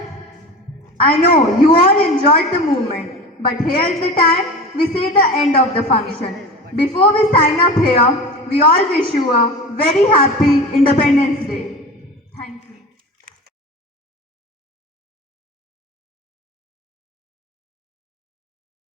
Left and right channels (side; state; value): both; normal; correlation 0.32